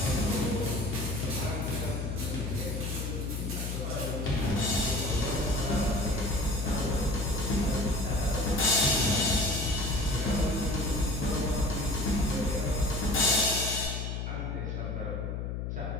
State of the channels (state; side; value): noise; left; hum, 3 dB below the sound